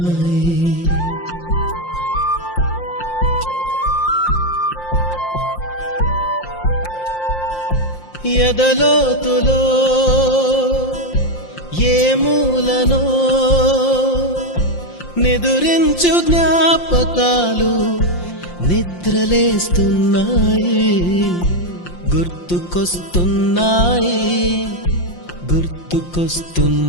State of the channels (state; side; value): late; right; 5.7 ms